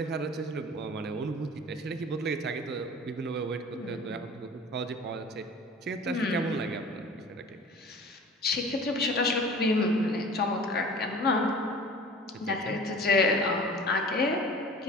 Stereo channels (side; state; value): both; normal; correlation 0.42